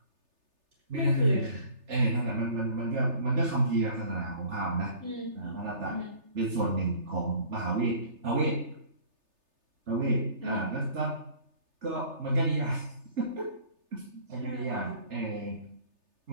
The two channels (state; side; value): late; left; 3.3 ms